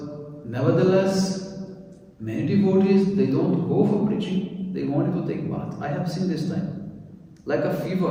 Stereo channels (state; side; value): identical; both; correlation 1.00